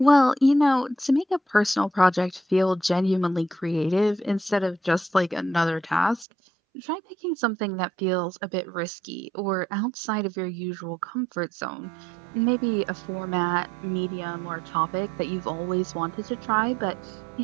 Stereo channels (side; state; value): left; drops out; at 6.2 s